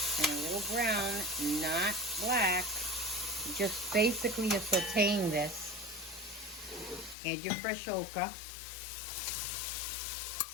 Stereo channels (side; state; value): right; drops out; at 7.2 s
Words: and a little brown, not black. Just basically you're sauteing this. Add your fresh okra.